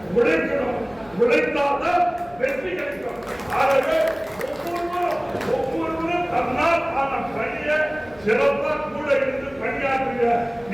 உழைக்கணும். உழைத்தால்தான் வெற்றி கிடைக்கும். ஆகவே ஒவ்வொருவரும் தன்னால் ஆன பணியை சிறப்பாக கூட இருந்து பணியாற்றுங்க.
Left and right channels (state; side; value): noise; left; hum, 25 dB below the sound